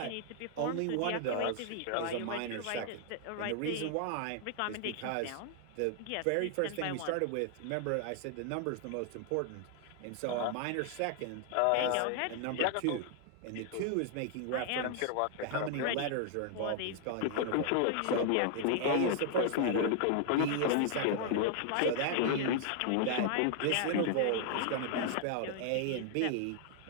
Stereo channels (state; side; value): different; both; correlation 0.00